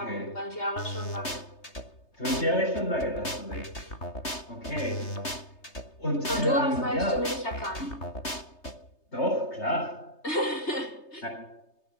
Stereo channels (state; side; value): late; right; 3.3 ms